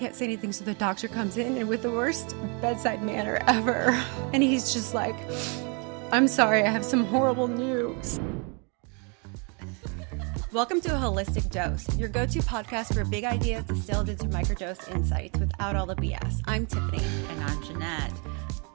say anything. So the doctor comes in and with the worst bedside manner ever. And he's just like, I'm sorry, I have some horrible news. Welcome to A Holistic Dose, your go-to podcast for big ideas distilled into microdose insights without all the BS. I'm Tiffany. And I'm Jeanette.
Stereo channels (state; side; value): quieter; left; 35.0 dB